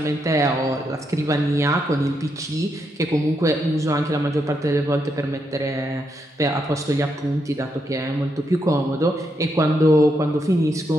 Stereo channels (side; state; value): both; normal; correlation 0.80